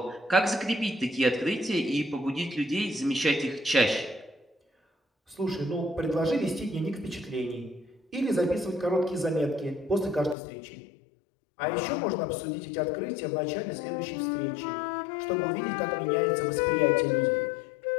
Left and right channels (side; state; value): right; drops out; at 10.4 s